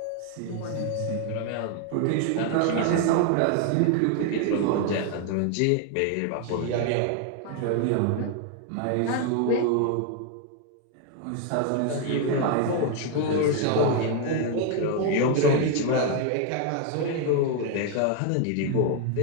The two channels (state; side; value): different; both; correlation 0.00